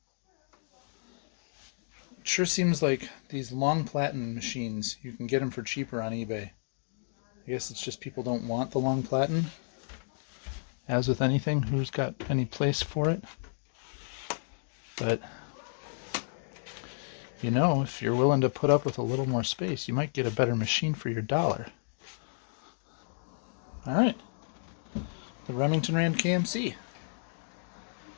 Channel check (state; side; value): silent; right; digital silence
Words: it sure seems like these long platen machines, you can get them for cheaper on eBay. I guess it's just people don't want the long platen. As with anything, who's got any place for it? But, you know, if you're willing to put up with a little more space, you might get a better machine for your dollar. All right. The Remington Rand KMC.